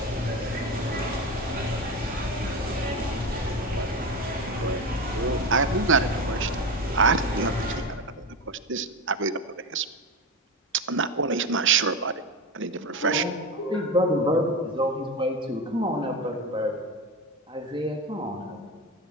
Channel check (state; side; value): normal; both; correlation 0.21